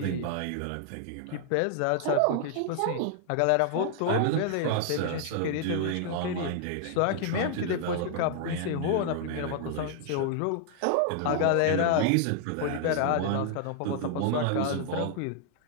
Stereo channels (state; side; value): different; both; correlation 0.00